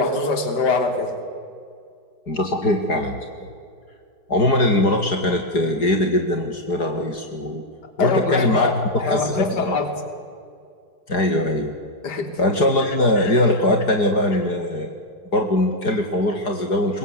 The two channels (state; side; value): late; right; 4.8 ms